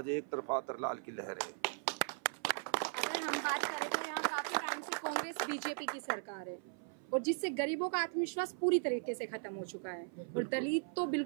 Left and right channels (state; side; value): silent; left; 52 dB below the other